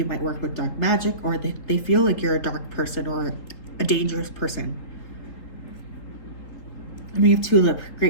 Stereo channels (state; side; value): late; right; 3.8 ms